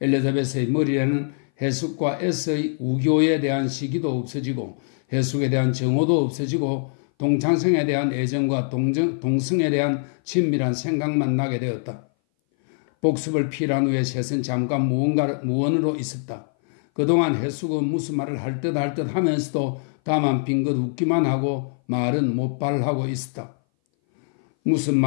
머리에는 해숙과 S의 우교에 대한 시기도 없어지고 해숙에 대한 정오도 없어지고 동창생에 대한 애정과 동성에 대한 친밀한 생각만 나게 되었다. 복습을 필요한 후에 셋은 잠깐 무언으로 있었다. 그동안 해숙은 무슨 말을 할 듯 하면서도 다만 빙긋 웃기만 하고 말은 못발하고 있었다. 무슨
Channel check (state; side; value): silent; right; 59 dB below the other